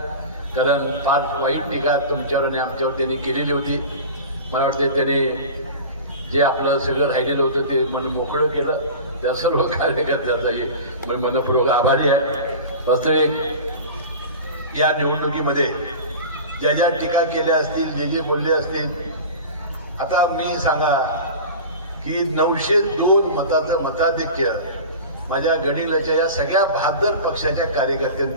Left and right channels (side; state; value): both; inverted; correlation -0.33